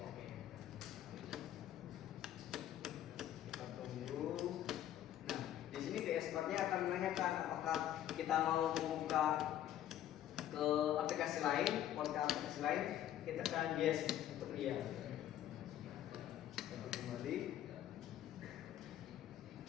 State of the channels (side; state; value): right; quieter; 11.8 dB